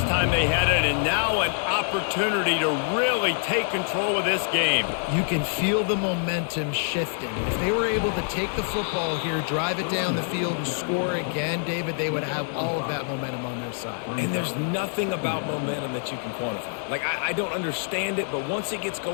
time they had it, and now an opportunity to really take control of this game. You can feel the momentum shifting. If they were able to take the football here, drive it down the field, and score again, David, they would have all of that momentum on their side. And there's nothing about momentum that you can quantify. Like, I don't understand it, but once it gets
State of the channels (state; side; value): silent; right; 61 dB below the other